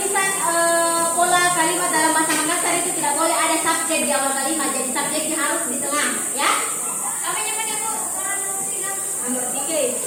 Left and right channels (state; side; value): identical; both; correlation 1.00